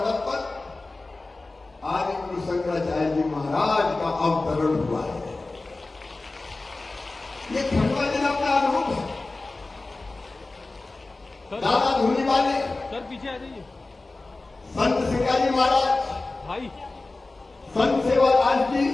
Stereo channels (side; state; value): right; quieter; 3.3 dB